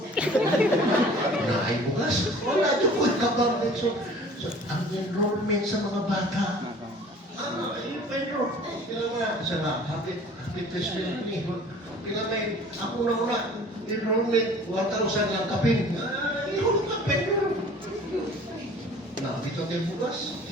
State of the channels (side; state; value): both; normal; correlation 0.47